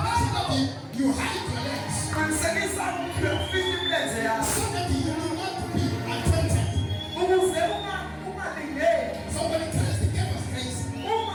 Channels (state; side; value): identical; both; correlation 1.00